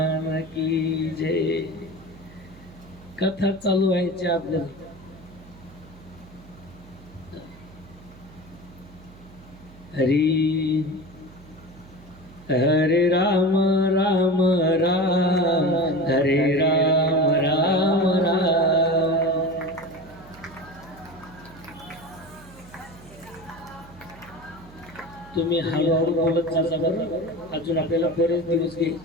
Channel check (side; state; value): right; noise; hum, 22 dB below the sound